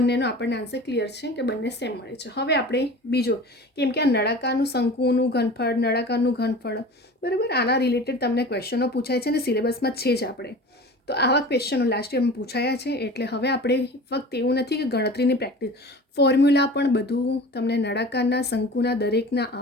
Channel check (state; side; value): normal; both; correlation 0.38